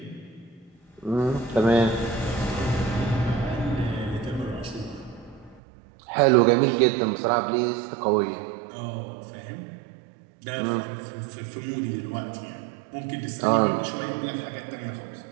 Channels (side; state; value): left; drops out; at 5.6 s